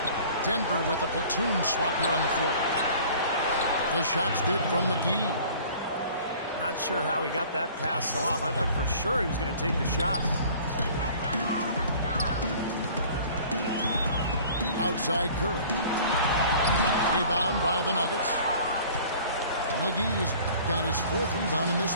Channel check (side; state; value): both; inverted; correlation -0.48